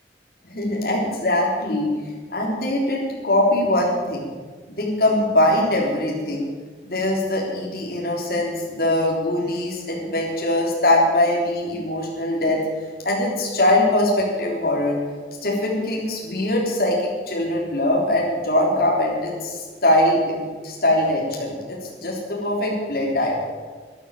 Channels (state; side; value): normal; both; correlation -0.04